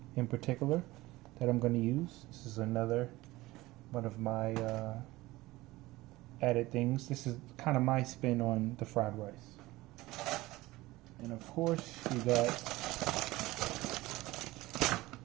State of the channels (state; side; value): quieter; left; 19.0 dB